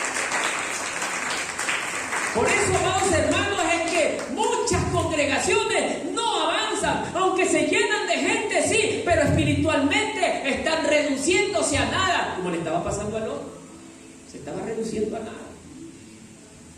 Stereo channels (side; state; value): both; identical; correlation 1.00